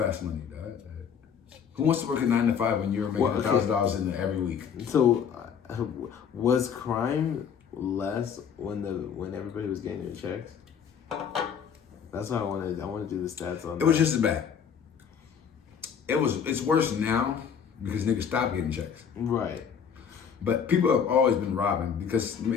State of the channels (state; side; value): quieter; right; 7.4 dB